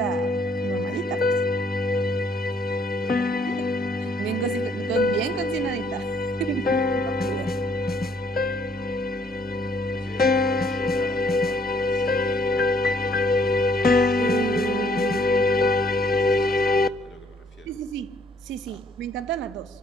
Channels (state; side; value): normal; both; correlation 0.65